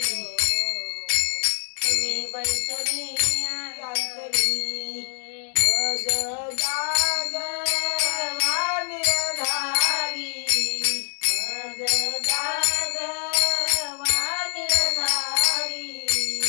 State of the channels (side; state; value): right; silent; digital silence